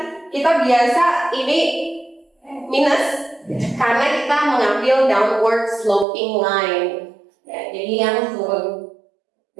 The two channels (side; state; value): left; drops out; at 6.1 s